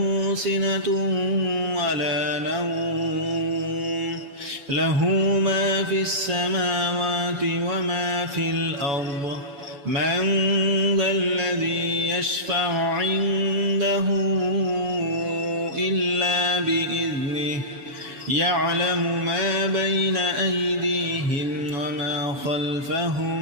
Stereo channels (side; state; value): left; late; 7.1 ms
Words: سنة ولا نوم له ما في السماوات وما في الأرض من ذا الذي يشفع عنده إلا بإذنه يعلم ما بين أيديهم وما